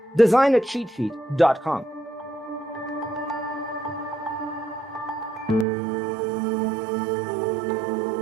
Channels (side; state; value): left; drops out; at 5.7 s